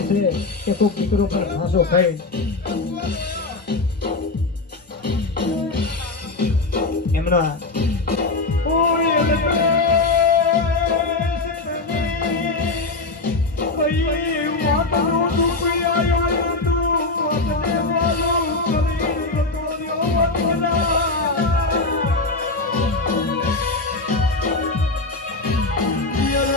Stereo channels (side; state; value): right; quieter; 3.4 dB